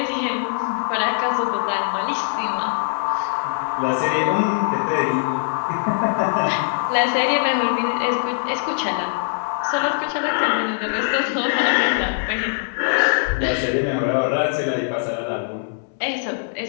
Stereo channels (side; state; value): right; silent; 64 dB below the other